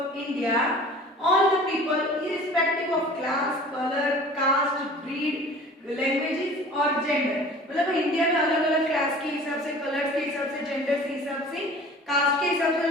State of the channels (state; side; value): normal; both; correlation 0.44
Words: India, all the people irrespective of class, color, caste, breed, languages और gender. मतलब इंडिया में अलग अलग क्लास के हिसाब से, कलर्स के हिसाब से, जेंडर के हिसाब से, कास्ट के हिसाब से